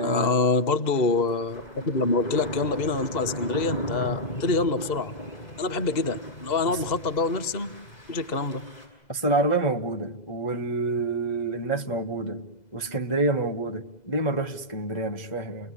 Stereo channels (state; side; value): late; right; 2.0 ms